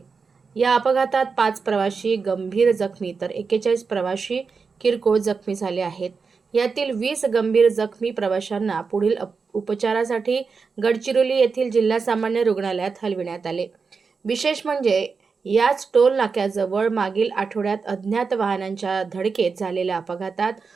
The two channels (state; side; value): quieter; left; 5.0 dB